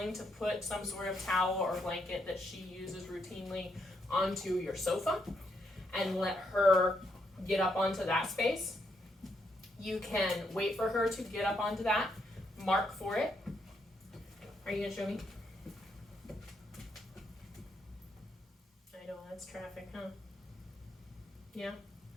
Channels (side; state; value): both; normal; correlation 0.77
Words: to put some sort of towel or blanket that she uses routinely onto your sofa and let her get up onto that space. You can wait for her to get up onto that, mark for it. Are you going to show me? I know, that's traffic, huh? Yeah?